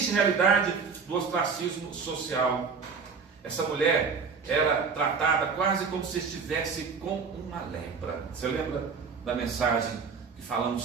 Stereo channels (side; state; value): left; quieter; 5.4 dB